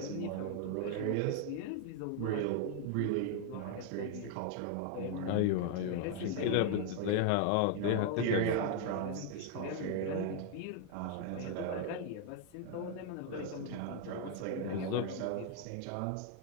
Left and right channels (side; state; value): both; different; correlation 0.00